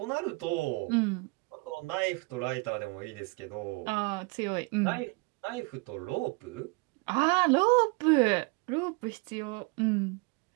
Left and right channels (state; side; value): quieter; left; 28.4 dB